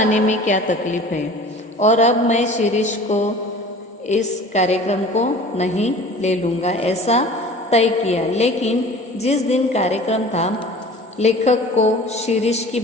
में क्या तकलीफ है, और अब मैं शिरीष को इस कार्यक्रम को नहीं ले लूँगा, ऐसा तय किया। लेकिन जिस दिन कार्यक्रम था, लेखक को शिरीष की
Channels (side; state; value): both; normal; correlation 0.43